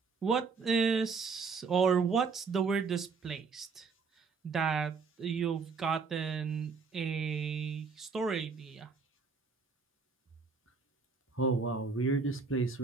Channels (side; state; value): left; quieter; 5.0 dB